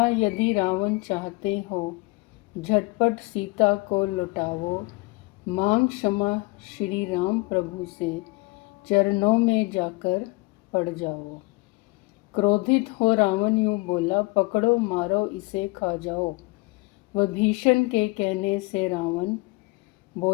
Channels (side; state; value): right; quieter; 24.0 dB